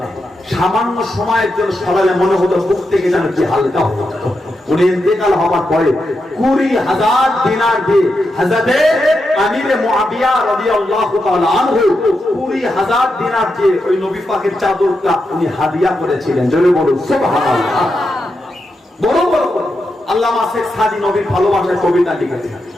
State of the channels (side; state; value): both; normal; correlation 0.86